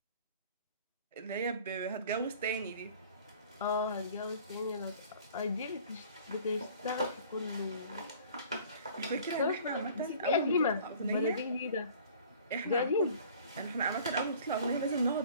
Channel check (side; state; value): both; inverted; correlation -0.49